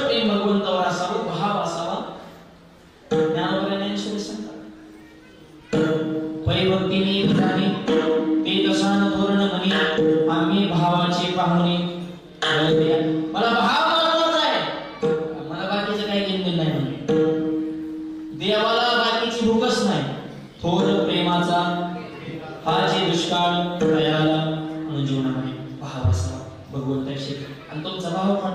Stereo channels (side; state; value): both; identical; correlation 1.00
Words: भगवंतावर असावं भाव असावा पैभक्तीने विधाने ते दशान धोरण म्हणी आम्ही भावाचे पाहुणे मला भाव महत्वाचा आहे मला बाकीचं काही घेणं नाही म्हणे देवाला बाकीची भूकच नाही थोर प्रेमाचा हाचे दुष्काळ दयाला म्हणून जीवनामध्ये भाव असावा भगवंताशी आणि तुमचा भाव